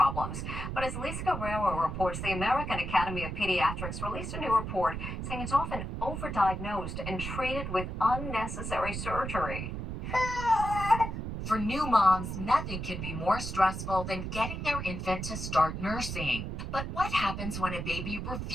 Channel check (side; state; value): right; noise; rumble, 5 dB below the sound